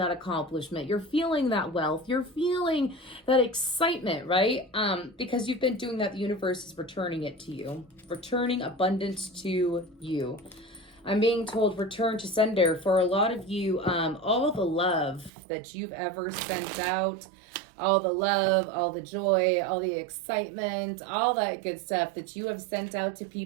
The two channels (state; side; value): drops out; left; at 15.3 s